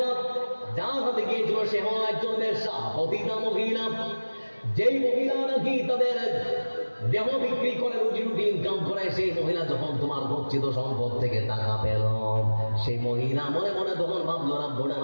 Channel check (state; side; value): inverted; both; correlation -1.00